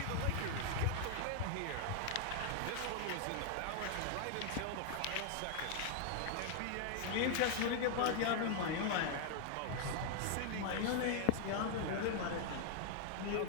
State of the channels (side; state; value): both; different; correlation 0.00